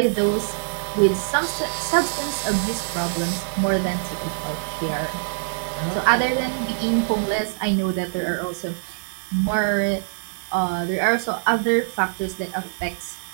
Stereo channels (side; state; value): left; silent; 63 dB below the other